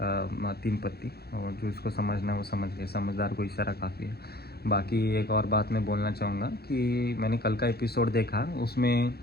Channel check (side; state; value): right; late; 0.46 ms